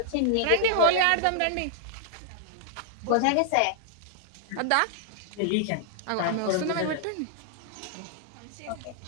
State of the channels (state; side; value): different; both; correlation -0.01